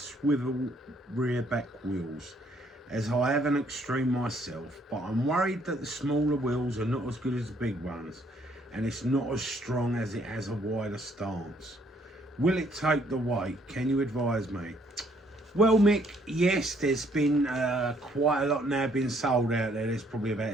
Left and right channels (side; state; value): both; normal; correlation 0.66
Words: rear back wheels, as I have an extreme myself, but I'm worried that the smaller wheels are not as good as the big ones, and it's not as strong as it has a wider stance. Will it take the weight? Can you advise me? Well, Mick, yes, there's been quite a lot now being sold out there. There's probably